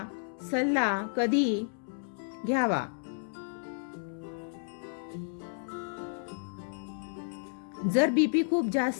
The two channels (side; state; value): right; silent; digital silence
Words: सल्ला कधी घ्यावा. जर बीपी खूप